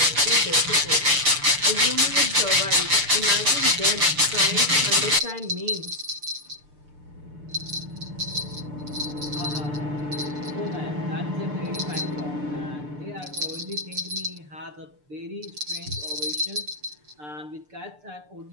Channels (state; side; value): late; left; 6.7 ms